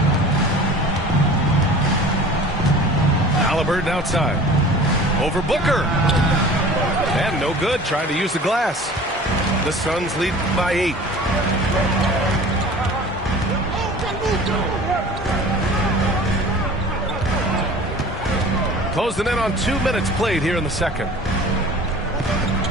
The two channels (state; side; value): normal; both; correlation 0.42